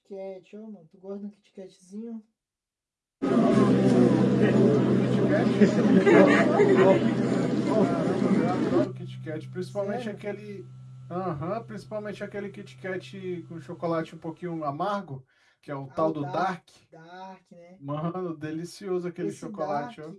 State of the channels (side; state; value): both; identical; correlation 1.00